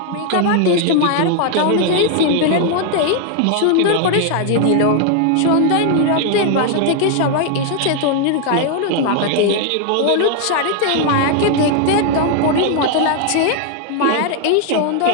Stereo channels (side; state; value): both; different; correlation 0.00